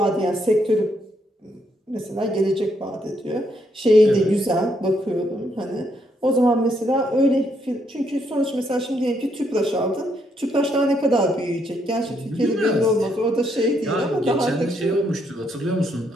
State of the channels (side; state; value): both; normal; correlation 0.75